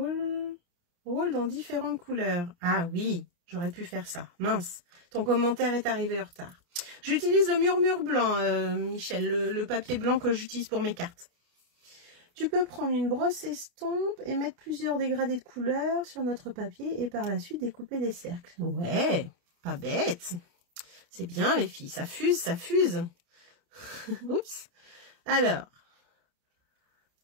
dans différentes couleurs. Ah oui, j'aurais pu faire ça. Mince, ton commentaire est arrivé en retard. J'utilise le murmure blanc, Michel, le papier blanc que j'utilise pour mes cartes. Tu peux prendre une brosse estompe et mettre plusieurs dégradés de couleurs sur notre papier et par la suite découper des cercles. Ouais, pas bête. C'est bien les filles, ça fuse, ça fuse. Oups. Alors,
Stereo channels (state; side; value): late; left; 29 ms